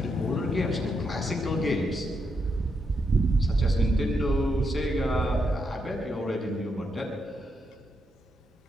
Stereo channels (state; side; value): normal; both; correlation 0.81